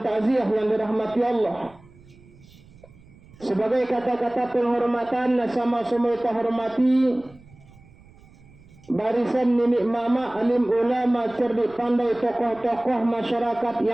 takziah yang dirahmati Allah, sebagai kata-kata penghormatan sama-sama kita hormati barisan nenek mama, alim ulama, cerdik pandai, tokoh-tokoh masyarakat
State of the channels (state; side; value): noise; right; rumble, 25 dB below the sound